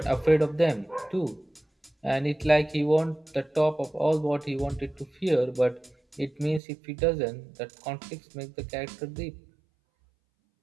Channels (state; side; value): drops out; left; at 6.6 s